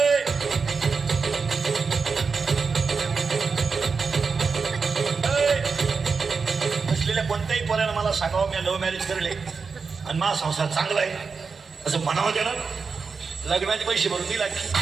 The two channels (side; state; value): left; quieter; 5.0 dB